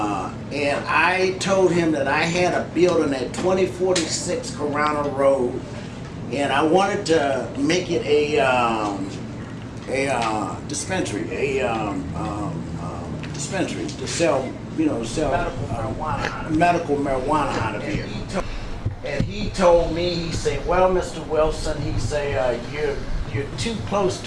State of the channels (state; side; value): identical; both; correlation 1.00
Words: I told him that I had a building at 2046 Corona Road and I wanted to make it a dispensary, dispensary to sell, medical marijuana out of here. And he told me, he said, well, Mr. Wilson, he said, you're too close